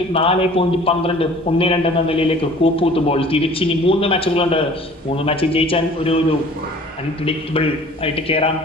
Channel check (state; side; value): normal; both; correlation 0.49